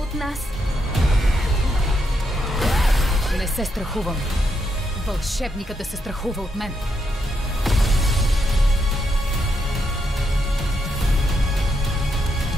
нас. Не се страхувам. Вълшебникът да се страхува от мен.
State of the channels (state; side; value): normal; both; correlation 0.80